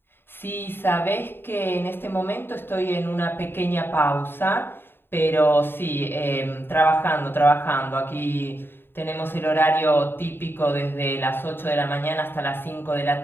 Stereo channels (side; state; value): right; late; 0.10 ms